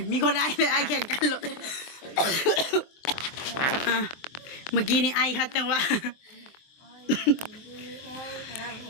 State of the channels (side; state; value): right; late; 24 ms